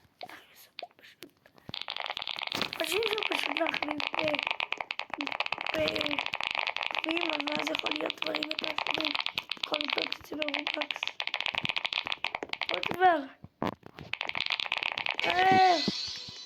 חושבים שהוא פשוט להחליף בגביעים, אבל אז יכול להיות דברים יותר חשובים. יכול לבדוק את זה ברובלוקס. עוד דבר.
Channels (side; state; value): both; identical; correlation 1.00